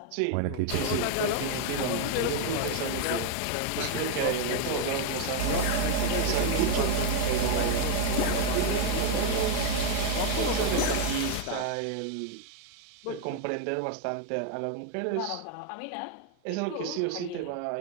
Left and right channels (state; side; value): different; both; correlation 0.01